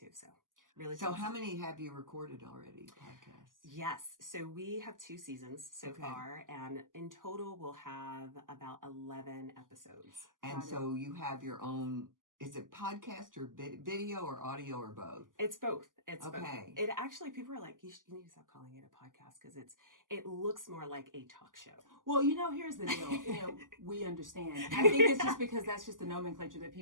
So really. So how many have you recorded already? Podcasts? Yes. So we have 2 seasons so far, and in total we'll have about 11 episodes. And so you have your own. Is it podcast or video or audio or both? It's both. It's both. Okay. It actually, people are like, you need to stop calling it a podcast because it looks more like a talk show. Well, here's the deal. We understand. I think it's just because that's just the nomenclature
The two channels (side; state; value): left; late; 0.89 ms